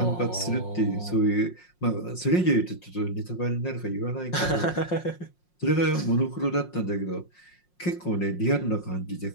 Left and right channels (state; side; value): late; right; 5.6 ms